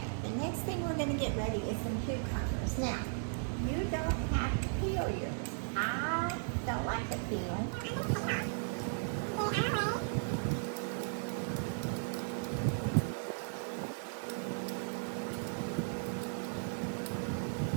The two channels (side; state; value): left; silent; digital silence